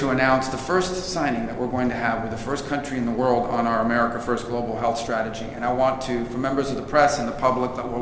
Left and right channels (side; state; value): both; identical; correlation 1.00